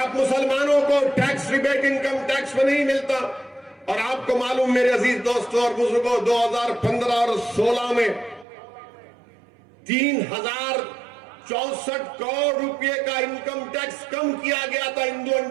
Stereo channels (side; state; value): left; drops out; at 8.5 s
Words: मुसलमानों को टैक्स रिबेट इनकम टैक्स में नहीं मिलता? और आपको मालूम मेरे अजीज दोस्तों और बुजुर्गों, 2015 और 16 में 3064 करोड़ रुपए का इनकम टैक्स कम किया गया था हिंदू